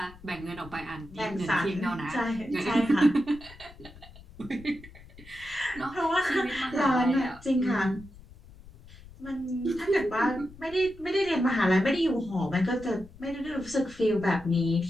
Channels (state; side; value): noise; left; rumble, 20 dB below the sound